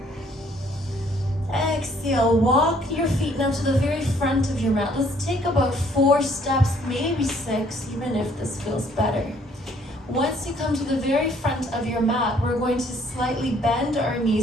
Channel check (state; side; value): normal; both; correlation 0.62